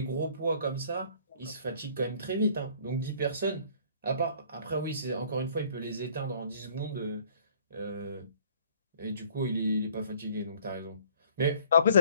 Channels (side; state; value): both; inverted; correlation -0.55